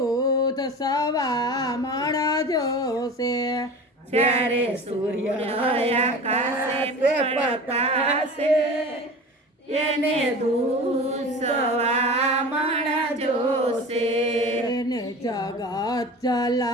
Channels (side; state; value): both; normal; correlation 0.35